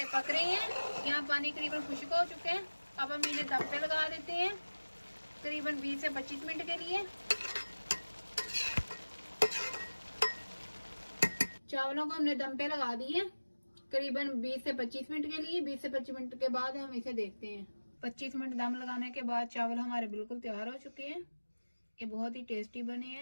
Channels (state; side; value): inverted; both; correlation -1.00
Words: पक रहे हैं, यहाँ पानी करीबन खुश्क हो चुके हैं। अब हम इन्हें दम पे लगा देते हैं करीबन 20 से 25 मिनट के लिए। चावलों को हमने दम पे लगा दिए करीबन 20 से 25 मिनट के लिए। 20 से 25 मिनट के बाद हम इसे देखते हैं। 25 मिनट दम लगाने के बाद चावल हमारे बिल्कुल तैयार हो चुके हैं। ये बहुत ही टेस्टी बने